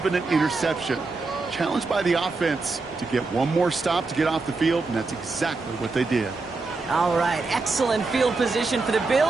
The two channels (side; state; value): left; quieter; 3.8 dB